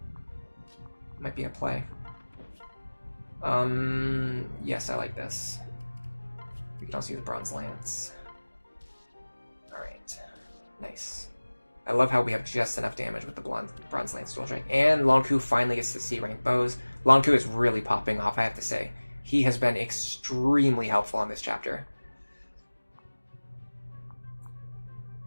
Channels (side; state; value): both; inverted; correlation -1.00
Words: Might be a play. Yes, I like this. We can also use Bronze Lance. Alright. Nice. I love how we have just enough damage with the Bronze Lance Dual Strike. And Lunatc finally gets to C-rank bows. Lunatc is really popping off, I have to say. He has been extremely helpful on this chapter.